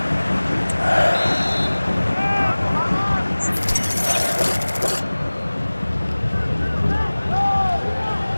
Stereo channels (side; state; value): both; inverted; correlation -1.00